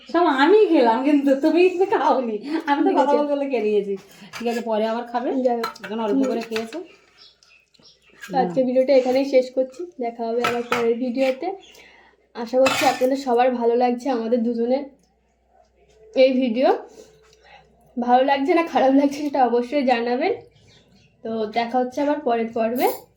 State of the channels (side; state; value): both; identical; correlation 1.00